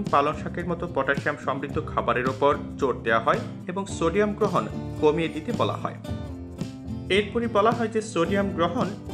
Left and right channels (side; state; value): both; identical; correlation 1.00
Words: পালং শাকের মতো পটাশিয়াম সমৃদ্ধ খাবারের ওপর জোর দেওয়া হয় এবং সোডিয়াম গ্রহণ কমিয়ে দিতে বলা হয়। এরপরই বলা হয় যে সোডিয়াম গ্রহণ